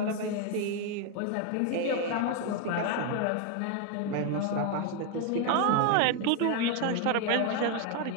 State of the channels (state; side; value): different; both; correlation 0.01